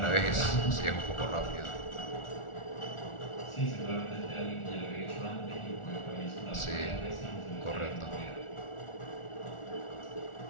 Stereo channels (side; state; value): right; late; 1.4 ms